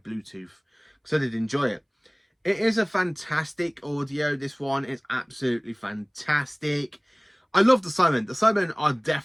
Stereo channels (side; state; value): both; identical; correlation 1.00